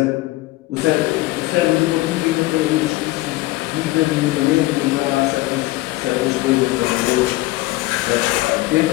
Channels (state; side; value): quieter; right; 19.1 dB